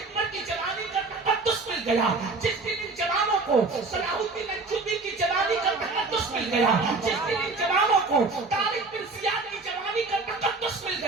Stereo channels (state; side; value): quieter; left; 3.7 dB